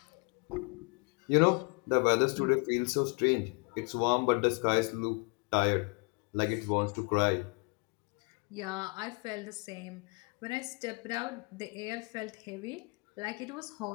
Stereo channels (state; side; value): quieter; right; 34.1 dB